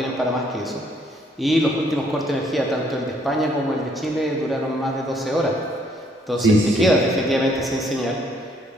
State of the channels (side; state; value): both; normal; correlation 0.67